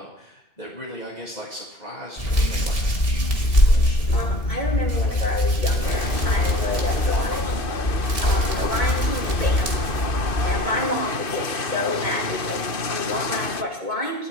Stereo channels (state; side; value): late; right; 2.5 ms